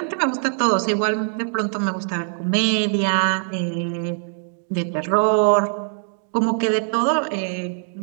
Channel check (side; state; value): left; silent; digital silence